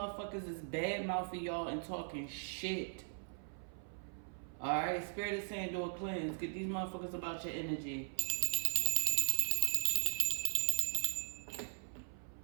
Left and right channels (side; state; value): left; silent; 52 dB below the other